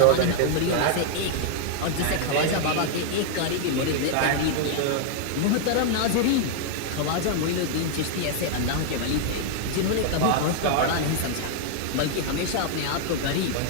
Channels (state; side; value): different; both; correlation 0.00